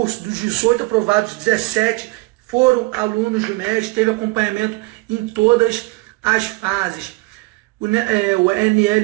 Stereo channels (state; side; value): quieter; left; 23.7 dB